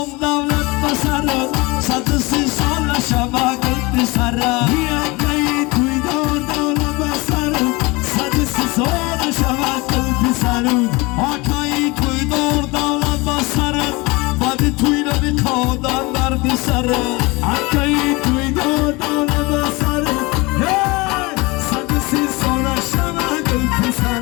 دولت بسره صد سی سال شبکت بسره بیایی توی دولت بسره صد سی سال شبکت بسره آکایی توی دولت بسره بعد توی نمی کادن در بسره آکایی توی دولت بسره صد سی سال شبکت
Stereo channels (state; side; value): quieter; right; 24.5 dB